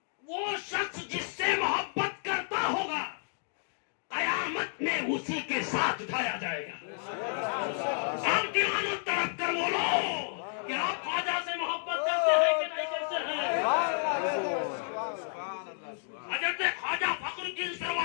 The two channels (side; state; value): right; silent; digital silence